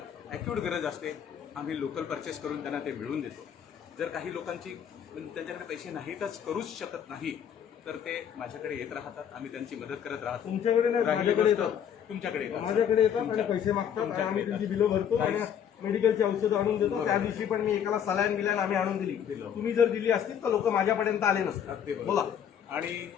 ॲक्यूट गरज असते आम्ही लोकल परचेस करून त्यांना ते मिळवून देतो. जर काही लोकांची त्यांच्याकडे पैसे नाहीतच, करूच शकत नाही, तर ते माझ्याकडे येत राहतात. आम्ही त्यांची मदत करत राहतो. तुमच्याकडे नाही, माझ्याकडे येतात. तुमच्याकडे येतात. माझ्याकडे येतात आणि पैसे मागतात आणि आम्ही त्यांची बिलं भरतो आणि मेडिकलची औषधं आणून देतो. त्या दिवशी पण मी एकाला सलाईन बिलाईन आम्ही आणून दिली. तुम्ही जर दिली असतील तर लोक माझ्यापर्यंत आले नसतात. बोला. आणि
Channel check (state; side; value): quieter; right; 8.7 dB